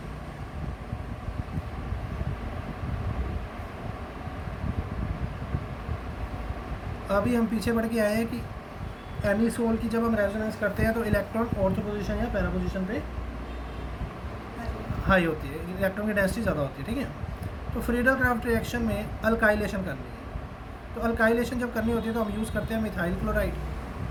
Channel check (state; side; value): identical; both; correlation 1.00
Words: अभी हम पीछे बढ़ के आए हैं कि एनिसोल की जब हम रेजोनेंस करते हैं तो इलेक्ट्रॉन ऑर्थो पोजीशन या पैरा पोजीशन पे हाई होती है, इलेक्ट्रॉन की डेंसिटी ज़्यादा होती है, ठीक है। तो फ्रीडल क्राफ्ट रिएक्शन में अल्काइलेशन करनी है, तो अल्काइलेशन जब करनी होती है तो हम यूज़ करते हैं मिथाइल क्लोराइड,